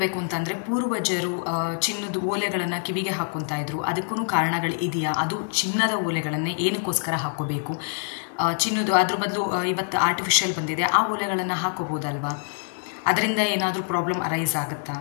ಅಂತಂದರೆ ಪೂರ್ವಜರು ಚಿನ್ನದ ಓಲೆಗಳನ್ನು ಕಿವಿಗೆ ಹಾಕ್ಕೊತಾ ಇದ್ರು. ಅದಕ್ಕೂ ಕಾರಣಗಳು ಇದೆಯಾ? ಅದು ಚಿನ್ನದ ಓಲೆಗಳನ್ನೇ ಏನಕ್ಕೋಸ್ಕರ ಹಾಕ್ಕೋಬೇಕು? ಚಿನ್ನದು ಅದ್ರ ಬದಲು ಇವತ್ತು ಆರ್ಟಿಫಿಷಿಯಲ್ ಬಂದಿದೆ, ಆ ಓಲೆಗಳನ್ನು ಹಾಕ್ಕೋಬೋದಲ್ವಾ? ಅದರಿಂದ ಏನಾದರೂ ಪ್ರಾಬ್ಲಮ್ ಅರೈಸ್ ಆಗುತ್ತಾ?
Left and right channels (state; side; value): silent; right; 62 dB below the other